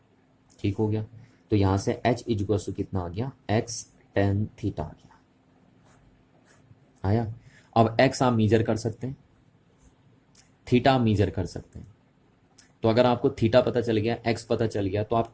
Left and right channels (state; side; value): identical; both; correlation 1.00